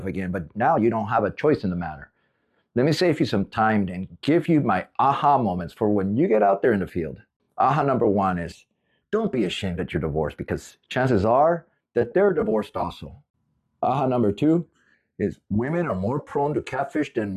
again, but now you don't have a choice in the matter. Let me save you some time and give you my aha moments for when you get out there in the field. Aha number one is, don't be ashamed that you're divorced, because chances are that they're divorced also. Aha number two is, women are more prone to catfish than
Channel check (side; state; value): both; identical; correlation 1.00